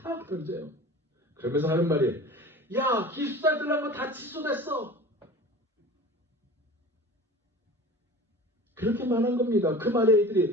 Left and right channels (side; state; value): both; normal; correlation 0.38